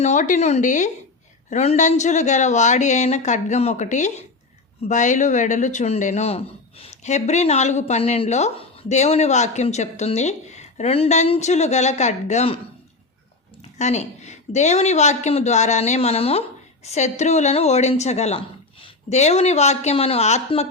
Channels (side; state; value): right; quieter; 3.6 dB